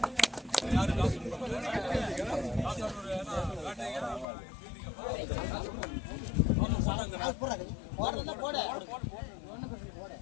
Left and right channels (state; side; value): drops out; right; at 4.2 s